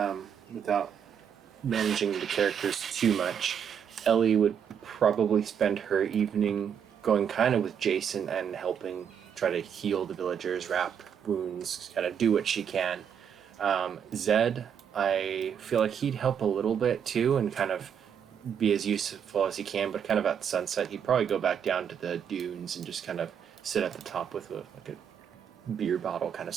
without managing the characters too much, Ellie would probably spend her evening going kind of with Jason and helping try to heal the villagers, wrap wounds, kind of do what she can. Zed, I feel like he'd help a little bit too and kind of be as useful as he can, but kind of at sunset, he'd probably go back down to the dunes and just kind of sit at the top with like a beer bottle, kind of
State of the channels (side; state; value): left; quieter; 8.0 dB